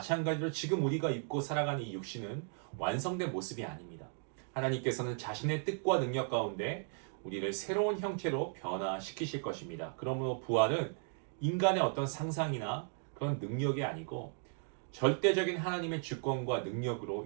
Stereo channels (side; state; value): left; silent; 54 dB below the other